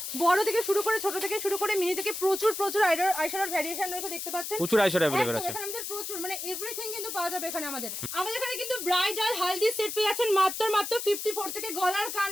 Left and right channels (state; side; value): noise; left; hiss, 6 dB below the sound